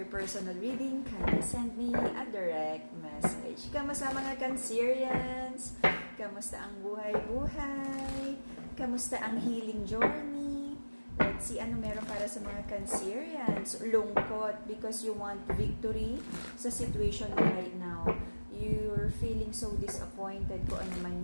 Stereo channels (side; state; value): both; inverted; correlation -1.00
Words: personal reading, kindly send me a direct message. Kamusta mga Cancerians? Kamusta ang buhay-buhay? Kamusta ang healing journey? Let's see ano meron para sa mga Cancerians. Lungkot because you want victory sa situation mo right now. You're feeling so disappointed kung ano